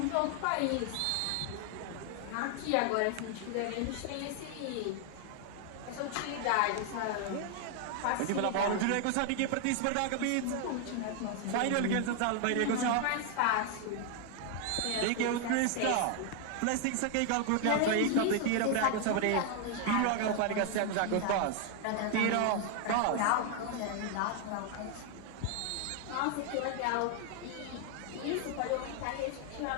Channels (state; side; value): different; both; correlation 0.00